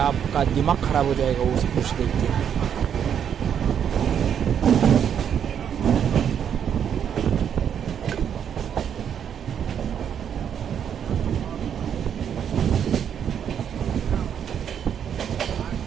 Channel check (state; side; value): quieter; left; 8.5 dB